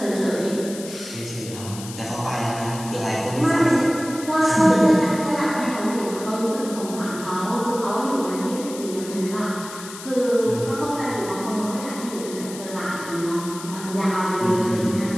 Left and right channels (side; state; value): left; noise; hiss, 13 dB below the sound